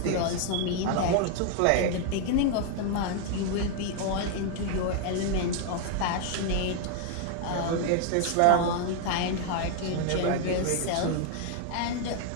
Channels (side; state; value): both; different; correlation 0.00